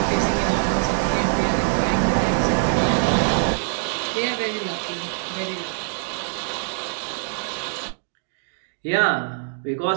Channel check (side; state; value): left; silent; digital silence